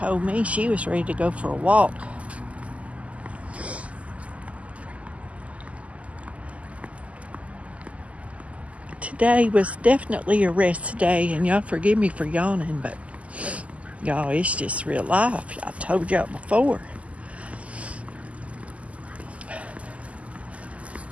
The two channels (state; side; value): late; left; 0.067 ms